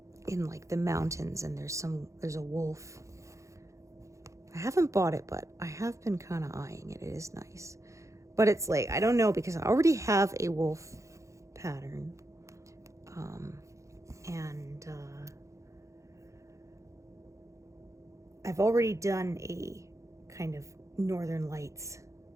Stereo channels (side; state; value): left; late; 0.15 ms